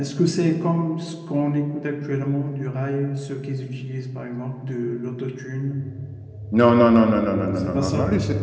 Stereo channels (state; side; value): identical; both; correlation 1.00